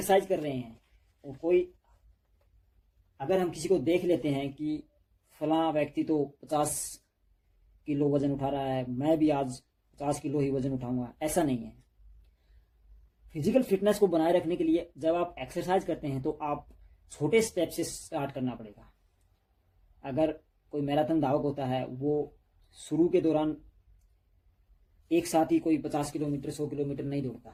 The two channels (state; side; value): identical; both; correlation 1.00